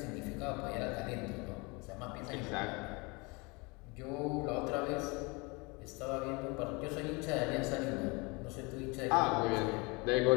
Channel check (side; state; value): right; quieter; 27.8 dB